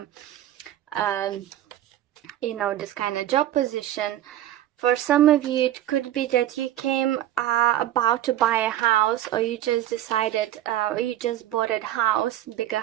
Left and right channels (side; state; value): left; quieter; 13.0 dB